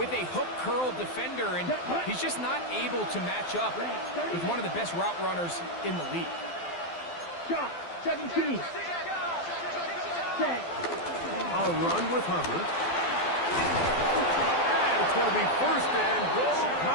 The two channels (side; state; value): right; late; 12 ms